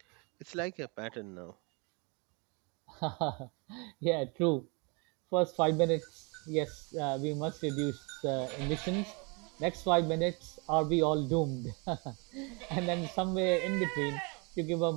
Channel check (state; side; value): quieter; left; 31.3 dB